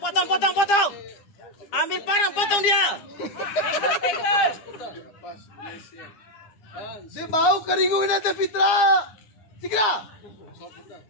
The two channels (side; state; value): right; late; 10 ms